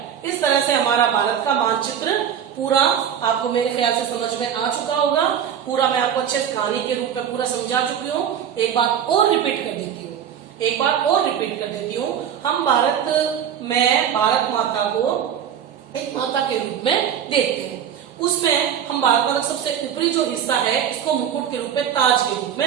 इस तरह से हमारा भारत का मानचित्र पूरा आपको मेरे ख्याल से समझ में आ चुका होगा। पूरा मैं आपको अच्छे कहानी के रूप में पूरा समझा चुकी हूँ। एक बात और रिपीट कर देती हूँ, हम भारत में भारत माता को एक माता के रूप में देखते हैं। उसमें हम भारत माता का सबसे ऊपरी जो हिस्सा है इसको मुकुट के रूप में, ताज के रूप में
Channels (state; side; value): quieter; left; 8.9 dB